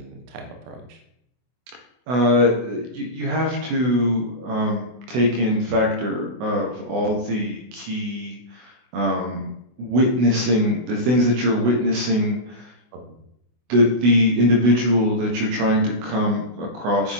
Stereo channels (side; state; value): left; late; 24 ms